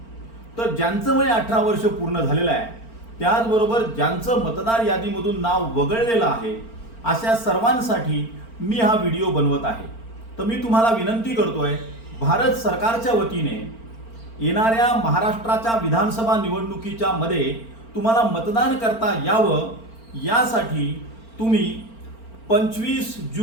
तर ज्यांचं वय 18 वर्ष पूर्ण झालेलं आहे, त्याचबरोबर ज्यांचं मतदार यादीमधून नाव वगळलेलं आहे, अशा सर्वांसाठी मी हा व्हिडिओ बनवत आहे। तर मी तुम्हाला विनंती करतोय, भारत सरकारच्या वतीने येणाऱ्या महाराष्ट्राच्या विधानसभा निवडणुकीच्या मध्ये तुम्हाला मतदान करता यावं, यासाठी तुम्ही 25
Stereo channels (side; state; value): right; late; 4.4 ms